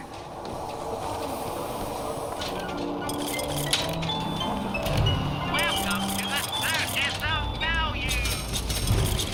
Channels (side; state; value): both; identical; correlation 1.00